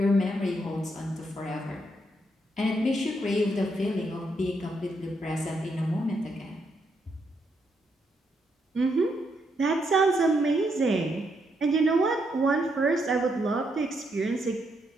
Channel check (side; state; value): both; normal; correlation 0.78